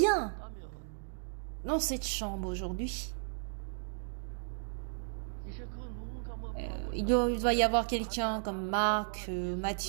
dans cette chambre aujourd'hui, il doit y avoir quelqu'un comme Marc,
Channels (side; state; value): left; silent; digital silence